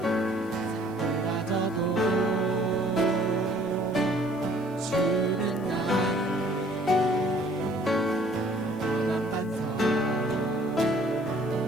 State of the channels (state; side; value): noise; left; hiss, 27 dB below the sound